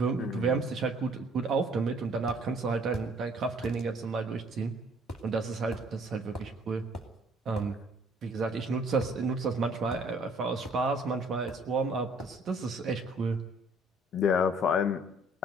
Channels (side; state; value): both; normal; correlation 0.58